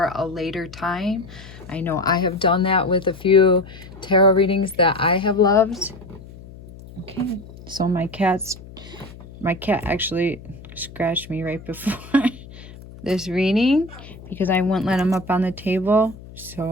a later time. I know I have done that with a few tarot readings that I have loved. Okay, so my cat actually scratched me right before this reading because I wouldn't let him up on the table, so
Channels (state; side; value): noise; left; hum, 17 dB below the sound